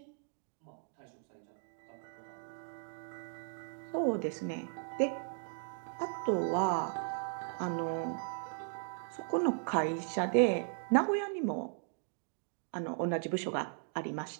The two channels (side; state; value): left; silent; 53 dB below the other